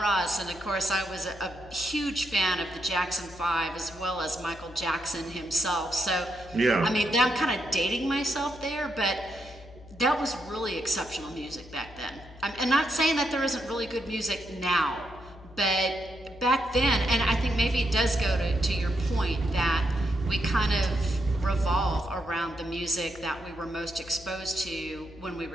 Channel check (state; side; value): noise; left; hum, 20 dB below the sound